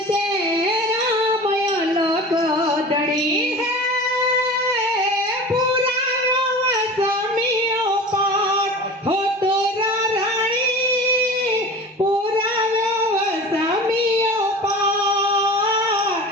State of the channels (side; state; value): both; normal; correlation 0.35